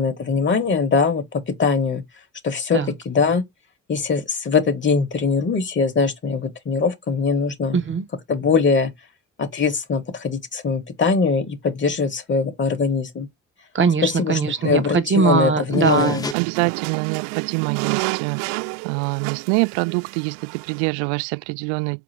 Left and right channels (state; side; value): drops out; left; at 16.4 s